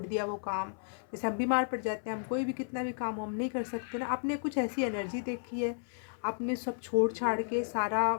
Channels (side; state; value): right; silent; 56 dB below the other